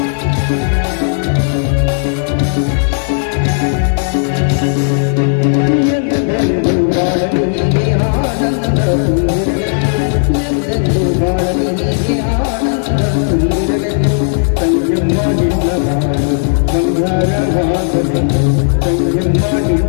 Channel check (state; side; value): silent; right; digital silence